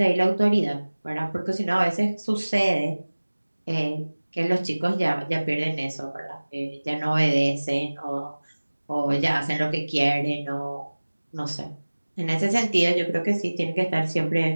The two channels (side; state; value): both; inverted; correlation -1.00